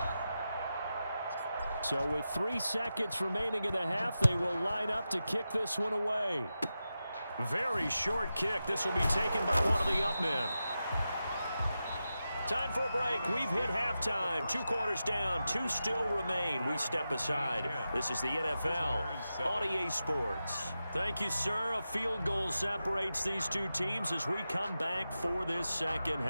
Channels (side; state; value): both; inverted; correlation -0.91